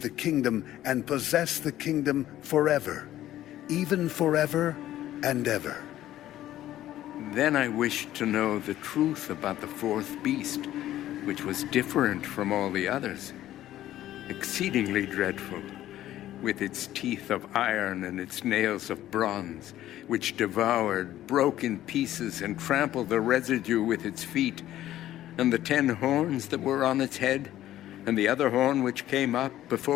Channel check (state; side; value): quieter; right; 13.4 dB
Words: the kingdom and possess the kingdom forever, even forever and ever. Then I wished to know the truth about the fourth beast, which was different from all the others, exceedingly dreadful, with its teeth of iron and its nails of bronze, which devoured, broke in pieces, and trampled the residue with its feet, and the 10 horns that were on its head, and the other horn which came up,